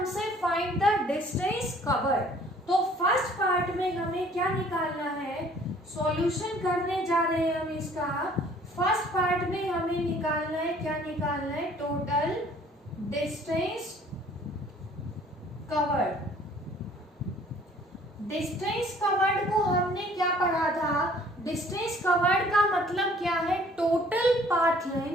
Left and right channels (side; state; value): both; normal; correlation 0.56